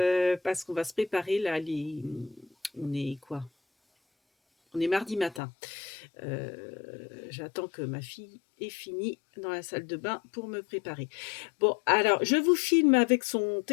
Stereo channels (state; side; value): drops out; right; at 5.4 s